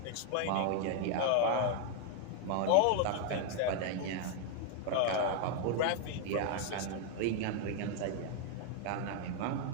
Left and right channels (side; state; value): both; different; correlation 0.00